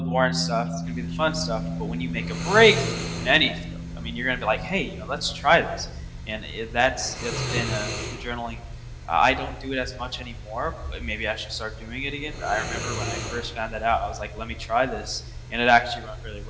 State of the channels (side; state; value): both; identical; correlation 1.00